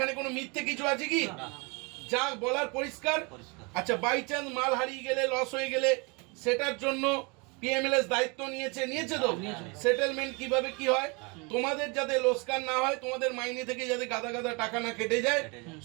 কোনো মিথ্যে কিছু আছে কি? না, যা বলার পরিষ্কার। পরিষ্কার। আচ্ছা, বাই চান্স মাল হারিয়ে গেলে, লস হয়ে গেলে, সেটার জন্য পিএমএলএস দায়িত্ব নিয়েছে তো? সেটেলমেন্ট কিভাবে কি হয়, তোমাদের যাতে লোকসান না হয়, তোমাদের মাইনে থেকে যাতে গাদা গাদা টাকা না কেটে যায়,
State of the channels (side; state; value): left; quieter; 29.9 dB